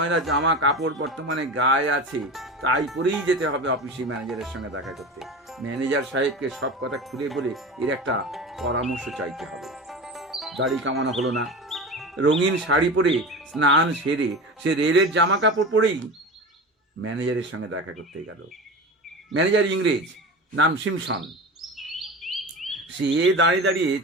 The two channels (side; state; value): both; normal; correlation 0.30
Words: জামা কাপড় বর্তমানে গায়ে আছে তাই পরেই যেতে হবে অফিসে ম্যানেজারের সঙ্গে দেখা করতে। ম্যানেজার সাহেবকে সব কথা খুলে বলে এর একটা পরামর্শ চাইতে হবে। দাড়ি কামানো হলো না। রঙিন শাড়ি পরে স্নান সেরে সে রেলের জামা কাপড় পরেই ম্যানেজারের সঙ্গে দেখা করতে গেল। ম্যানেজার ইংরেজ, নাম সিমসন। সে দাঁড়িয়ে দাঁড়িয়ে